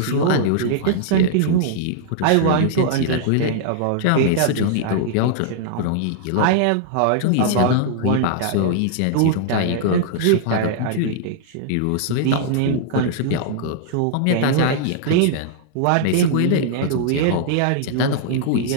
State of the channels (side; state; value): both; different; correlation -0.01